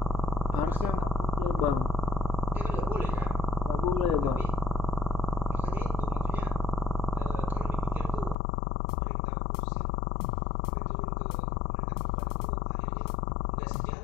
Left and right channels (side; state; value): right; drops out; at 8.3 s